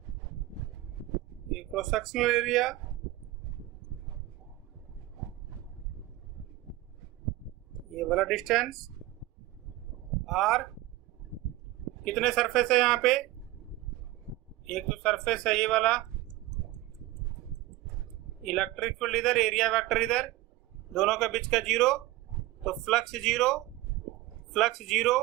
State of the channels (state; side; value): quieter; left; 17.3 dB